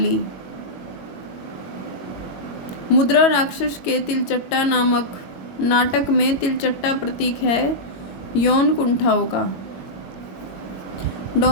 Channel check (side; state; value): right; late; 22 ms